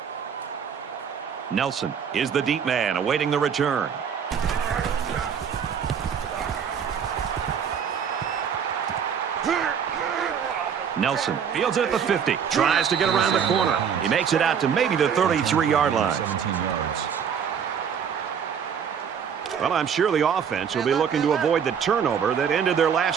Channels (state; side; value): quieter; left; 7.5 dB